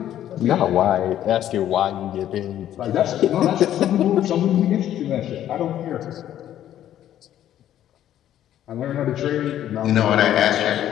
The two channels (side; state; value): right; quieter; 11.6 dB